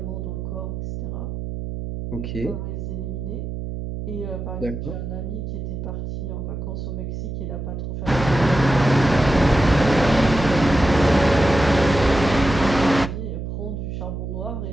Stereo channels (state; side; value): noise; right; hum, 6 dB below the sound